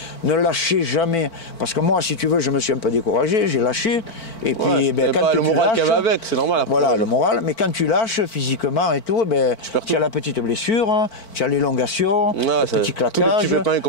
ne lâchez jamais. Parce que moi, si tu veux, je me suis un peu découragé, j'ai lâché. Et puis, quand le moral qu'il y avait avec, c'est normal. Après. Voilà, le moral. Mais quand tu lâches physiquement et tout, tu as la petite blessure, tu as l'élongation, le petit claquage,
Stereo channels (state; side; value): late; right; 4.5 ms